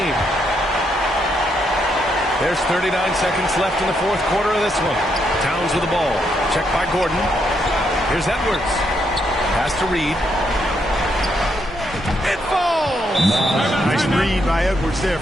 There's 39 seconds left in the fourth quarter of this one. Towns with the ball. Checked by Gordon. Here's Edwards. Pass to Reed. It falls! Nice read by Edwards there,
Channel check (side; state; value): both; normal; correlation 0.77